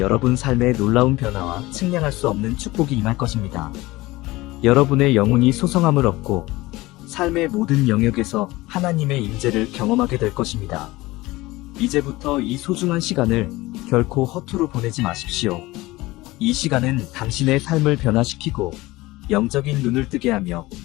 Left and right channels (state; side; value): quieter; right; 19.8 dB